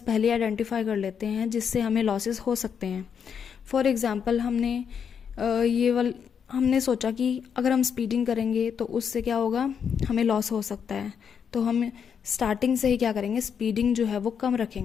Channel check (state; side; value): quieter; right; 7.3 dB